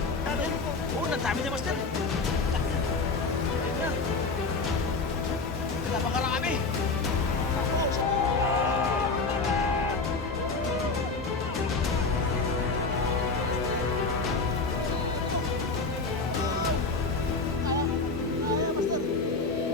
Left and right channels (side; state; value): right; quieter; 3.9 dB